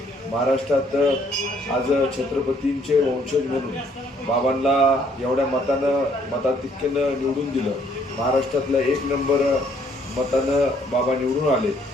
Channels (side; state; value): both; normal; correlation 0.65